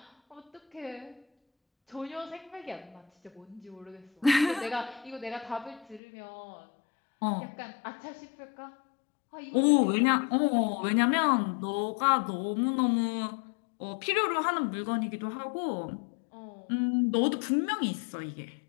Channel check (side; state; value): right; drops out; at 6.0 s